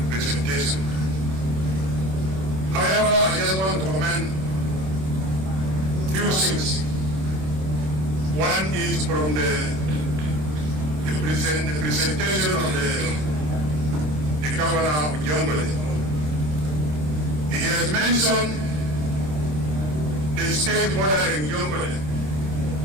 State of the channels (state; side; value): late; left; 26 ms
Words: presentation. However, I just want to commend few things. One is from the presentation of the governor of Jonglei. He has mentioned the state bordering Jonglei,